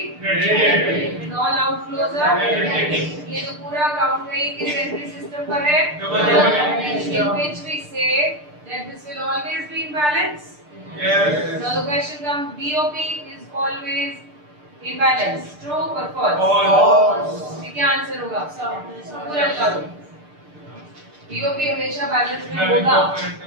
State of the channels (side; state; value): left; late; 6.7 ms